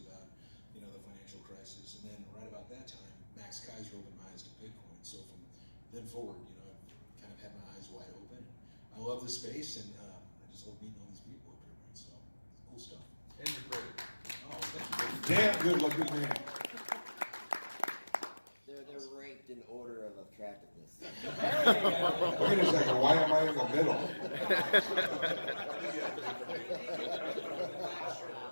about, the financial crisis. And then right about that time, Max Kaiser opened my eyes to Bitcoin. So from then forward, I've kind of had my eyes wide open. I love the space, and I just love meeting all these people up here, man. So, cool stuff. And you're great. Oh, thank you. Damn good looking man. They're ranked in order of attractiveness. Wait a second, why am I in the middle?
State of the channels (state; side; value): inverted; both; correlation -1.00